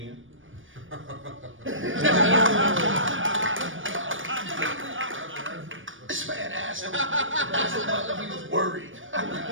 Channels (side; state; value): left; late; 0.57 ms